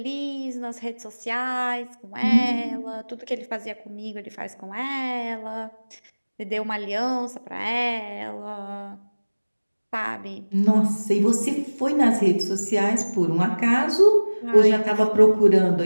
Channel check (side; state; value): both; inverted; correlation -1.00